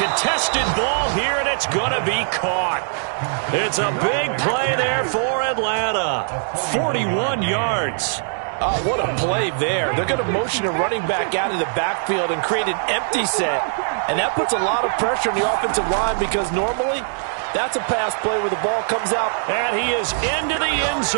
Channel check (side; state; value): left; silent; digital silence